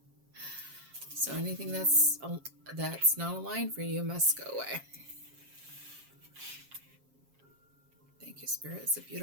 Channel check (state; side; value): late; left; 7.4 ms